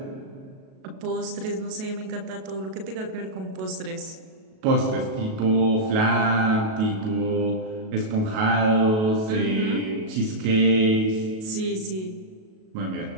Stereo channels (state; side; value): late; left; 37 ms